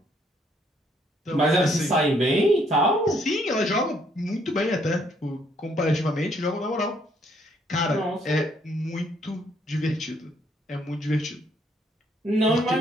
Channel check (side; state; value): both; normal; correlation 0.68